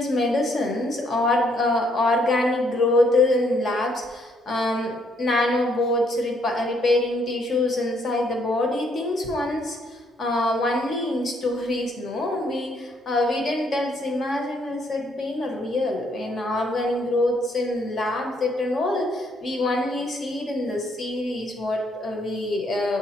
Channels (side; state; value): both; normal; correlation 0.70